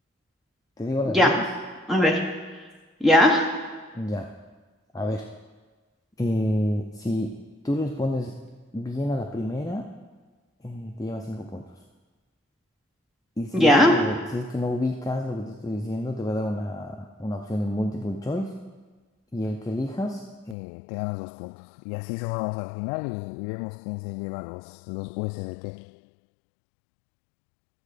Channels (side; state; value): right; drops out; at 20.6 s